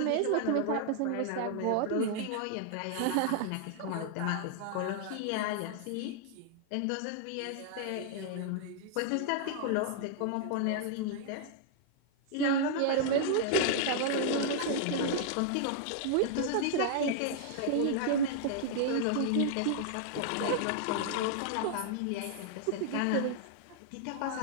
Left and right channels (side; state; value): both; different; correlation -0.01